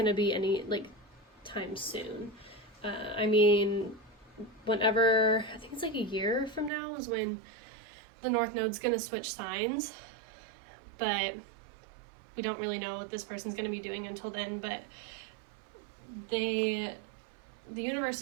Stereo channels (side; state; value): left; drops out; at 6.7 s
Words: to be any like time soon. I mean, whenever, I think it's like a year from now is when the North Node's going to switch signs, but we don't really know what this person's going to be doing until then. But the universe